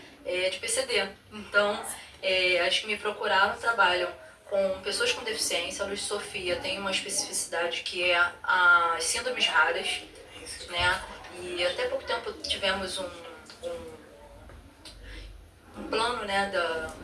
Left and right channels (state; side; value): identical; both; correlation 1.00